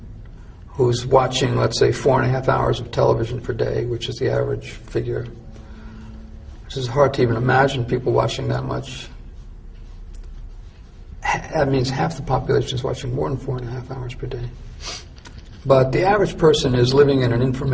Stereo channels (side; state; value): both; identical; correlation 1.00